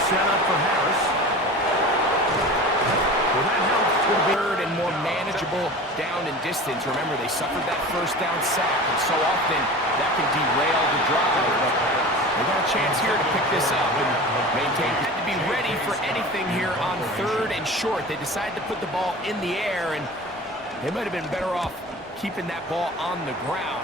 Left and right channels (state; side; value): normal; both; correlation 0.36